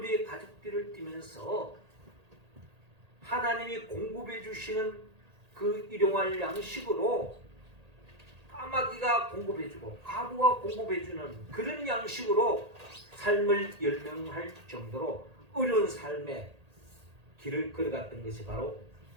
가죽띠를 띠면서 하나님이 공급해 주시는 그 일용할 양식으로 까마귀가 공급해주고 과부가 공급해주는 그런 양식으로 삶을 열명할 정도로 어려운 삶의 길을 걸어갔던 것이 바로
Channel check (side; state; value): left; late; 1.8 ms